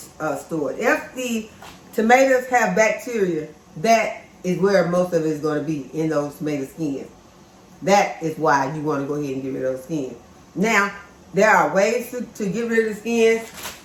stored. If the tomatoes have bacteria, that is where most of it is going to be, in those tomato skins. That is why you want to go ahead and get rid of those skins. Now, there are ways to get rid of the skins.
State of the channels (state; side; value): identical; both; correlation 1.00